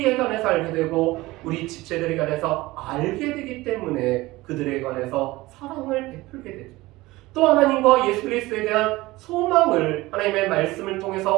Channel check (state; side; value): quieter; left; 19.7 dB